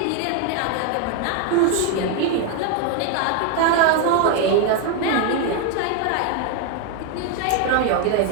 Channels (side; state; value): both; different; correlation 0.01